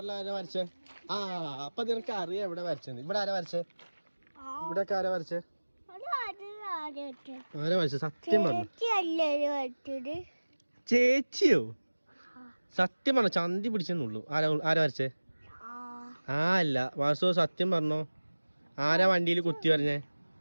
ആരാ വരച്ചേ? ആ അപ്പൊ നിനക്ക് അറിയാം എവിടെ വരച്ചത്. ഇവിടെ ആരാ വരച്ചേ? ഇവിടെ ഒക്കെ ആരാ വരച്ചേ? ആരാ വരച്ചേ? സത്യം പറഞ്ഞു. ചേച്ചിയോ? സത്യം പറഞ്ഞോ? ചന്തി പിടിച്ചെന്നുള്ളൂ. ആരാ വരച്ചേ? ആ അല്ല വാസു, സത്യം പറഞ്ഞോ? ആരാ വണ്ടിയിൽ കുത്തി പറഞ്ഞേ?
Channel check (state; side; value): inverted; both; correlation -1.00